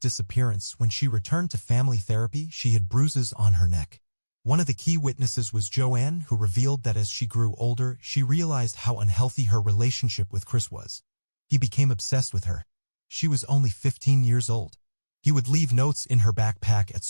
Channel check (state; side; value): inverted; both; correlation -1.00